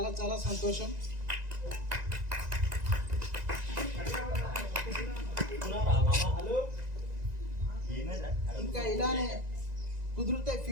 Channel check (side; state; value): left; late; 1.9 ms